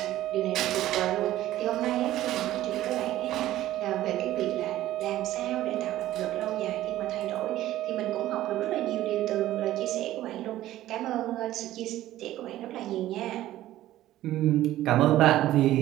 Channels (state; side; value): quieter; left; 14.4 dB